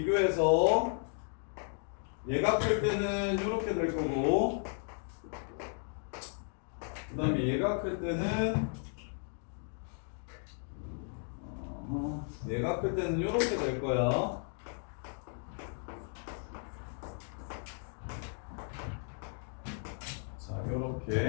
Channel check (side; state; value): right; silent; 55 dB below the other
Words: 얘가 클 때는 이렇게 될 거고 그 다음에 얘가 클 때는 얘가 클 때는 이렇게 될 거야. 자,